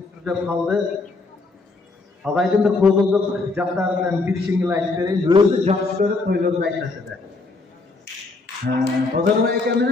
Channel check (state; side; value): quieter; right; 3.6 dB